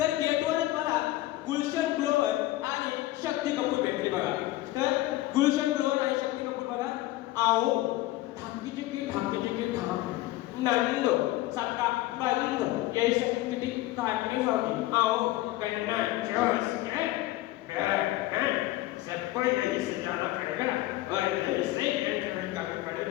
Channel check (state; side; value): quieter; right; 17.1 dB